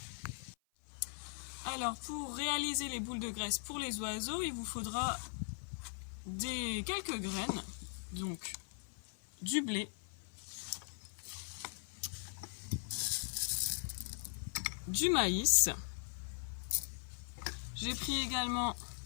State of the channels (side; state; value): right; silent; 51 dB below the other